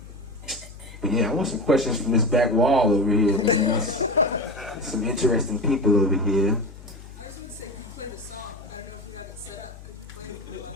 But yeah, I want some questions from this back wall over here, man. There's some interesting people over here. I just want to say, you played a song. I don't know if you have it set up. Could you play it on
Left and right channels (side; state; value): left; noise; hum, 17 dB below the sound